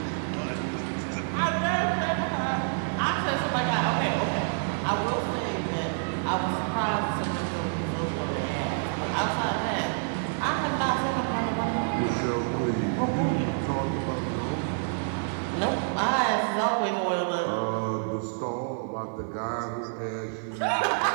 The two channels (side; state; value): left; silent; digital silence